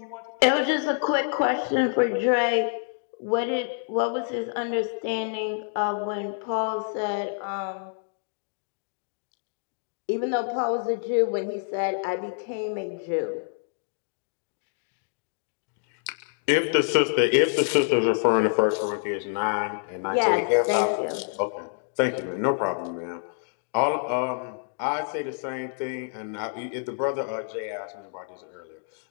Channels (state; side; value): silent; right; digital silence